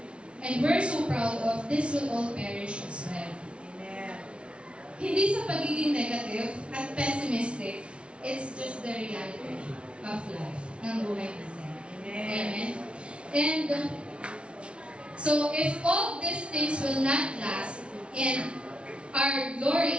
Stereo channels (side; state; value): left; late; 0.059 ms